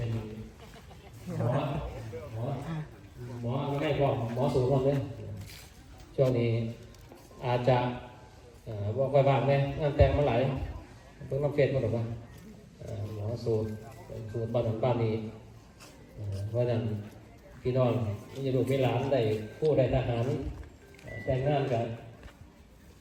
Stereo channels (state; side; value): identical; both; correlation 1.00